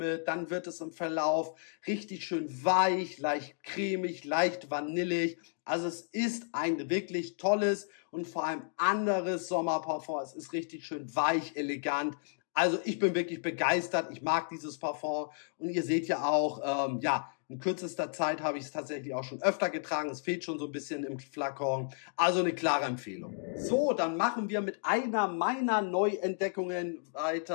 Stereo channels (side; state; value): right; silent; digital silence